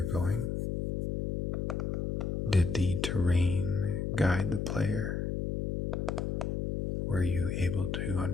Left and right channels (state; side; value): noise; left; hum, 1 dB below the sound